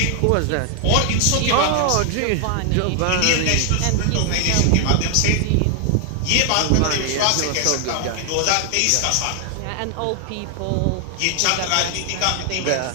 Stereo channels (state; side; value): different; both; correlation 0.00